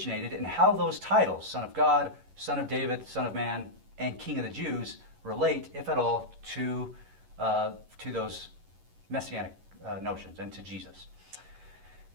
and how those titles, Son of God, Son of David, Son of Man, and King of the Jews, relate, if at all, to those messianic notions and to Jesus.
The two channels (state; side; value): late; left; 11 ms